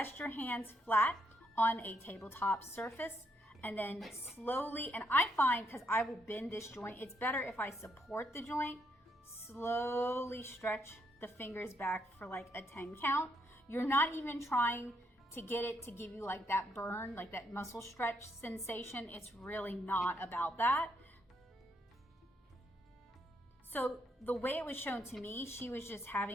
your hands flat on a tabletop surface, and then slowly, and I find, because I will bend this joint, it's better if I support the joint, slowly stretch the fingers back for like a 10 count. You're not even trying to get it to give you like that burn, like that muscle stretch sensation. It's really not about that. So the way it was shown to me, she was just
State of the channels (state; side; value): normal; both; correlation 0.76